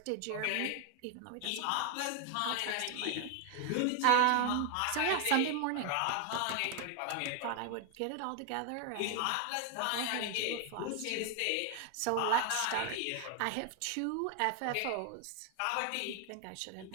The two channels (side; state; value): both; different; correlation 0.00